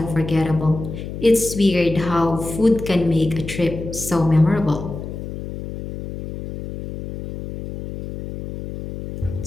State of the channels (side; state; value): left; noise; hum, 9 dB below the sound